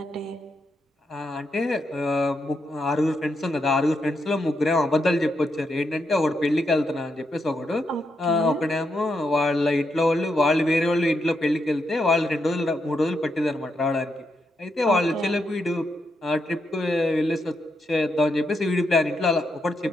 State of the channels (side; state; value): both; normal; correlation 0.82